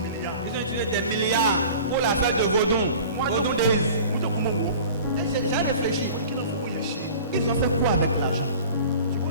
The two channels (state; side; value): inverted; both; correlation -0.42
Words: milliards. Ils ont utilisé des milliards pour la fête de Vaudon. Vaudon de Mo jẹ́ kó mo wò ó. Et j'ai réfléchi. Kí ló fún òye ṣe? Ils ont fait quoi avec l'argent?